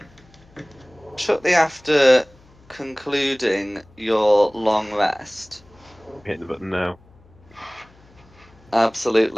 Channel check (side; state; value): left; noise; hum, 27 dB below the sound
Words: after concluding your long rest, Hit the button now.